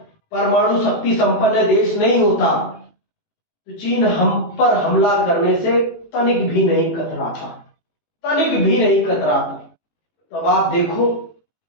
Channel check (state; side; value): late; right; 18 ms